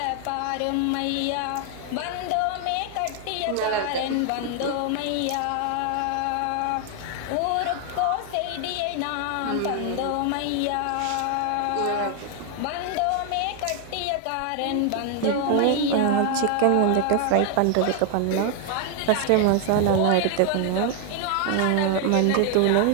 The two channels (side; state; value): both; different; correlation 0.00